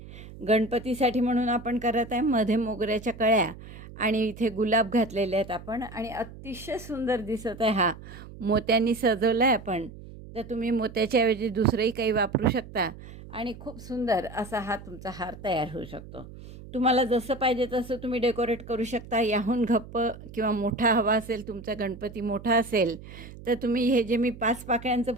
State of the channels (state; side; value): noise; right; hum, 16 dB below the sound